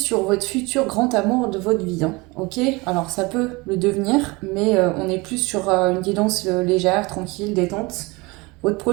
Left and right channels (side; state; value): left; quieter; 24.8 dB